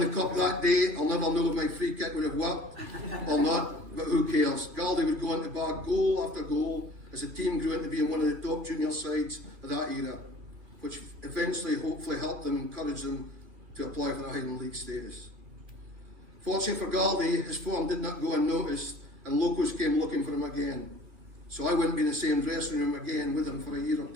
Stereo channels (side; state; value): left; late; 2.9 ms